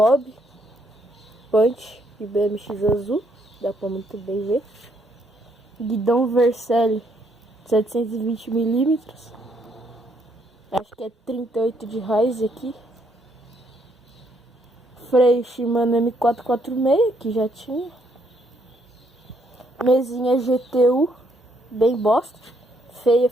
Punch e BMX azul. Dá pra muito bem ver. Guidão Vercelli 720mm. Acho que é 38 de raiz aqui. Freio Shimano M446, que já tinha. Mesinha GTU, bem bosta. Feia,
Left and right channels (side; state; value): both; normal; correlation 0.72